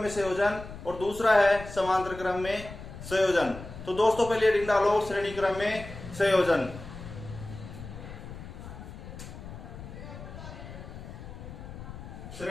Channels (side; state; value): left; noise; rumble, 12 dB below the sound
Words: संयोजन और दूसरा है समांतर क्रम में संयोजन। तो दोस्तों पहले हेडिंग डालो श्रेणी क्रम में संयोजन।